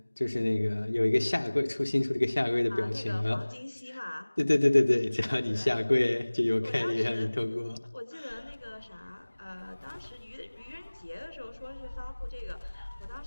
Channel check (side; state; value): both; inverted; correlation -1.00